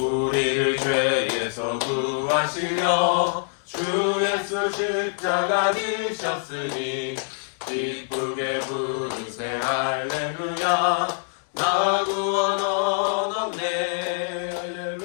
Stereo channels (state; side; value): silent; right; digital silence